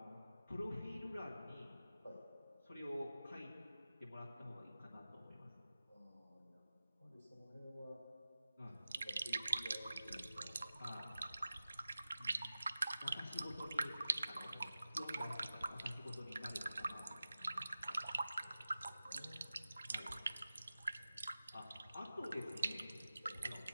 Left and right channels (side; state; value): both; inverted; correlation -0.95